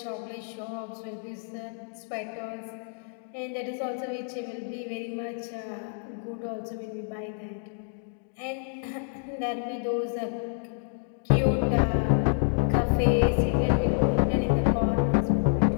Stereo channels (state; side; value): silent; right; digital silence